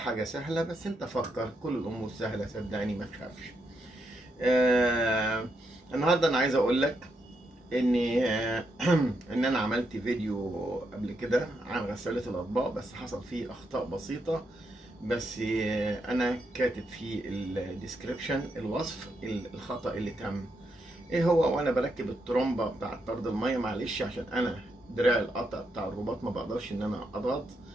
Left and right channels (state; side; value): normal; both; correlation 0.81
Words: سهله، بس انت فكر، كل الامور سهله صدقني، ما تخافش. النهارده انا عايز اقول لك اني ان انا عملت فيديو قبل كده عن غساله الاطباق، بس حصل فيه اخطاء بسيطه، بس انا كاتب في الديسكريبشن الوصف الخطا اللي تم ايه هو. وانا بركب الترومبه بتاعه طرد الميه، معلش عشان انا دراع القطع بتاع الرباط ما بقدرش ان انا اضغط،